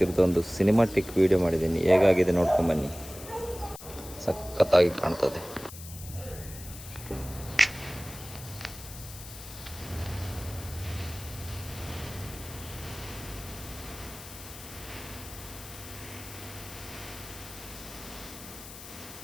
ಸಿನಿಮಾಟಿಕ್ ವಿಡಿಯೋ ಮಾಡಿದ್ದೀನಿ. ಹೇಗಾಗಿದೆ ನೋಡ್ಕೊಂಬನ್ನಿ. ಸಖತ್ತಾಗಿ ಕಾಣ್ತದೆ.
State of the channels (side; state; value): left; noise; hiss, 14 dB below the sound